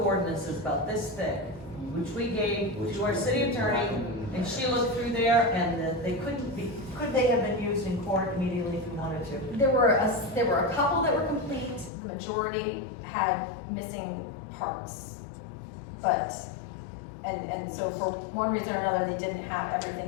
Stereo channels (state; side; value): drops out; right; at 11.9 s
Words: ordinances about this thick, which we gave to our city attorney, and she looked through there, and they could they have been used in court immediately if we wanted to? There were a couple that were complete, the majority had missing parts. But, and so for one reason or another, they didn't have